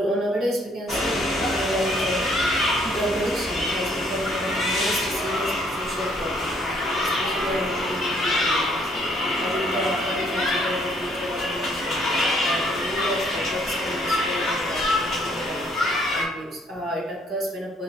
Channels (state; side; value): normal; both; correlation 0.65